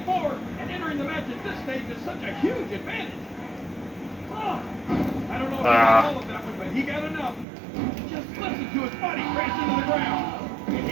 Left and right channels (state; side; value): drops out; left; at 7.5 s